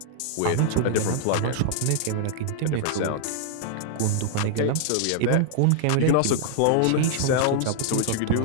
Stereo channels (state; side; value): different; both; correlation -0.01